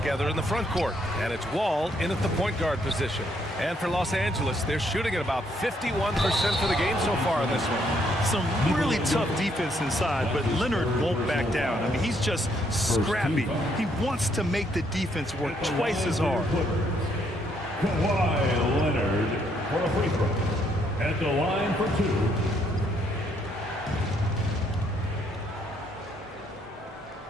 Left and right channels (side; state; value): both; normal; correlation 0.71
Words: in the front court. And it's Wall in at the point guard position. And for Los Angeles, they're shooting at about 51% for the game so far in this one. Some really tough defense inside, but Leonard won't back down. I mean, he's just scrappy. He wants to make the defense work twice as hard. Kawhi Leonard for a free throw. At the line for two.